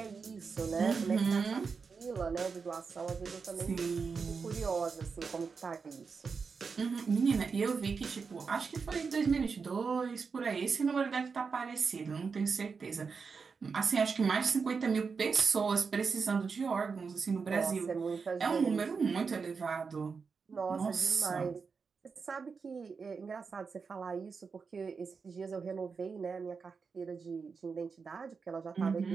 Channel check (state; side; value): quieter; left; 5.2 dB